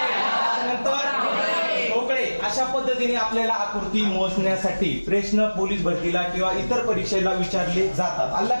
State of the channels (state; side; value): inverted; both; correlation -1.00